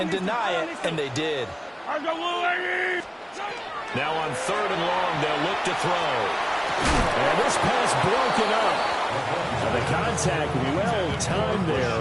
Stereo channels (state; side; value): identical; both; correlation 1.00